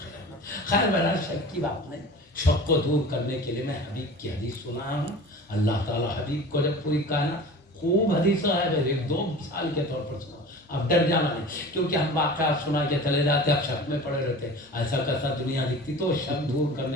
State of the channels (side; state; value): both; normal; correlation 0.38